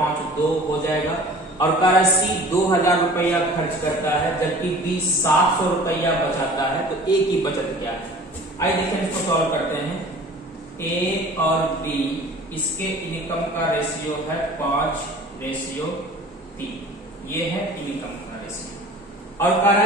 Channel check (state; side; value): normal; both; correlation 0.44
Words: हो जाएगा। और कह रहा है सी 2000 रुपया खर्च करता है जबकि बी 700 रुपया बचाता है, तो ए की बचत क्या है? आइए देखें, इसको सॉल्व करते हैं। ए और बी इसके इनकम का रेशियो है 5:3, ये है इनकम का रेशियो। और कह रहा